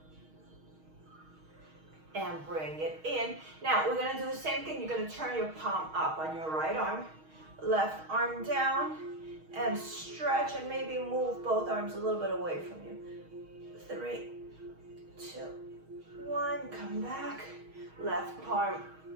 And bring it in. Now, we're going to do the same thing. You're going to turn your palm up on your right arm. Left arm down. And stretch and maybe move both arms a little bit away from you. 3, 2, 1. Come back. Left palm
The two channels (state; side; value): late; left; 6.4 ms